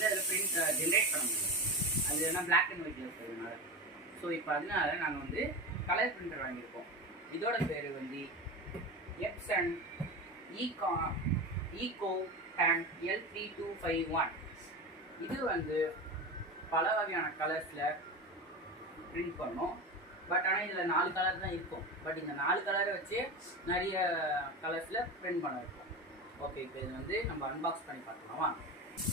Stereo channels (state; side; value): normal; both; correlation 0.25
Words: அதில் பிரிண்ட் ஜென்ரேட் பண்ண முடியும். அது என்ன பிளாக் அண்ட் ஒயிட்டில் இருக்கிறதுனால. ஸோ இப்போ அதனால நாங்கள் வந்து கலர் பிரிண்டர் வாங்கியிருக்கோம். இதோட பேர் வந்து எப்சன் ஈகோ டேன் L3251. இது வந்து பல வகையான கலர்ஸில் பிரிண்ட் பண்ணோம். பட் ஆனால் இதில் 4 கலர் தான் இருக்கும். பட் இந்த 4 கலரை வச்சு நிறைய கலர்ஸில் பிரிண்ட் பண்ண இருக்கும். ஓகே, இப்போ இது வந்து நம்ம அன்பாக்ஸ் பண்ணி பார்க்கலாமா?